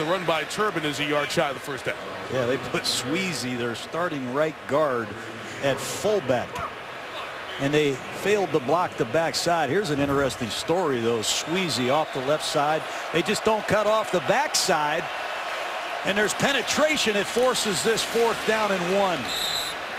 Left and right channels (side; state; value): both; identical; correlation 1.00